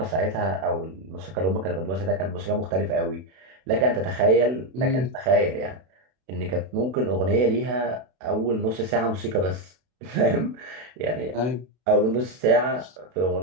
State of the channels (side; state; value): left; late; 32 ms